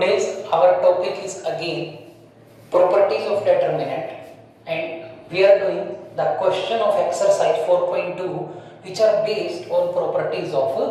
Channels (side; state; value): both; identical; correlation 1.00